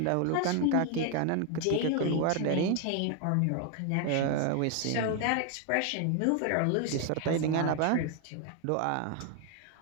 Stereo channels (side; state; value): both; different; correlation 0.01